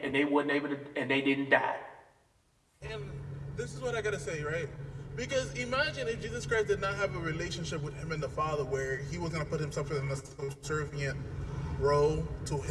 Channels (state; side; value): identical; both; correlation 1.00